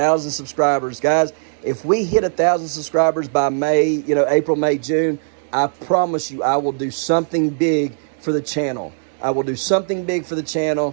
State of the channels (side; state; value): left; silent; digital silence